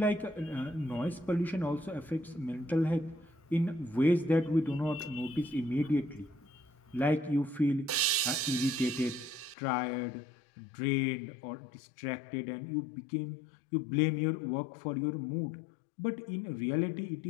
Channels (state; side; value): drops out; right; at 9.6 s